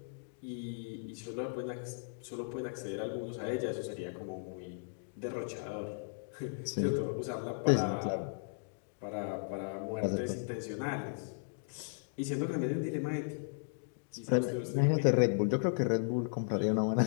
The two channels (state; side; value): silent; right; digital silence